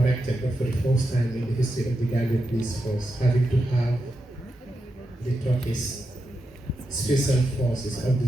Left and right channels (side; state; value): both; normal; correlation 0.87